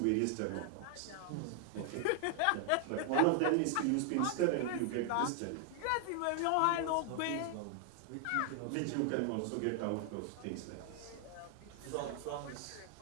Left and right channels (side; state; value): both; different; correlation 0.00